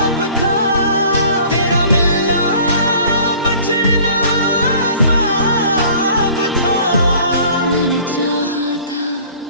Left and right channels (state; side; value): inverted; both; correlation -0.50